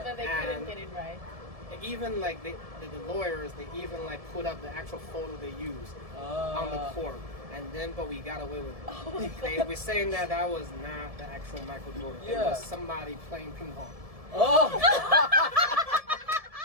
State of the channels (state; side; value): late; left; 1.7 ms